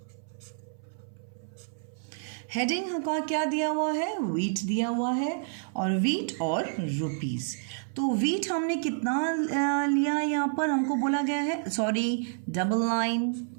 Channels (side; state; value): left; silent; 59 dB below the other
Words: हेडिंग का क्या दिया हुआ है, व्हीट दिया हुआ है और व्हीट और रुपीस. तो व्हीट हमने कितना लिया, यहाँ पर हमको बोला गया है, सॉरी डबल लाइन.